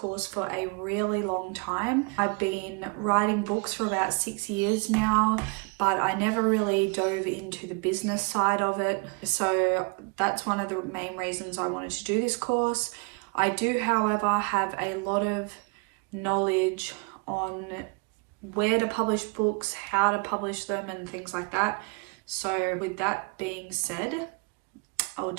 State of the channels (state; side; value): quieter; left; 32.4 dB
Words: for a really long time. I've been writing books for about 6 years now, but I never really dove into the business side of it. So that's one of the main reasons I wanted to do this course. I do, however, have a lot of knowledge on where to publish books, how to publish them, and things like that. So with that being said, I'll